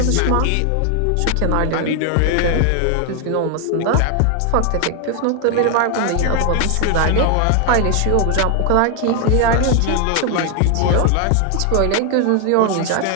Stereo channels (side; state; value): both; different; correlation 0.01